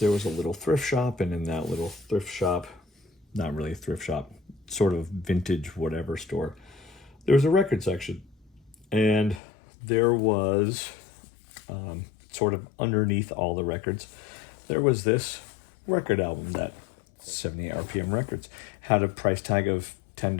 was a little thrift shop, and in that little thrift shop, not really a thrift shop, sort of vintage whatever store, there was a record section. And there was sort of underneath all the records, there was this record album that 78 RPM Records had a price tag of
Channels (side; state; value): right; drops out; at 9.4 s